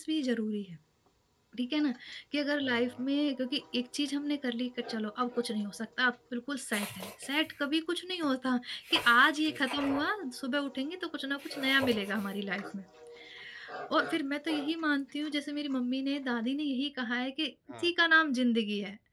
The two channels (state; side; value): identical; both; correlation 1.00